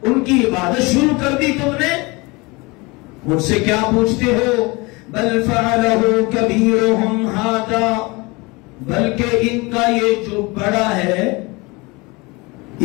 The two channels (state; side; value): quieter; right; 25.5 dB